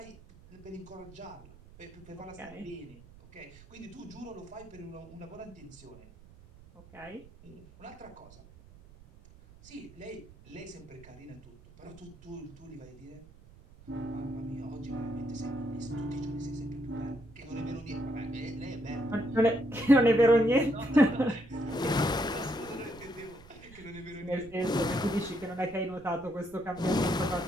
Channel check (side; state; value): right; noise; rumble, 21 dB below the sound